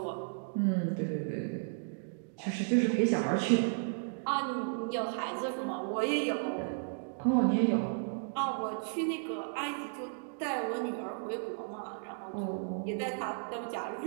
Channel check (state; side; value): silent; left; digital silence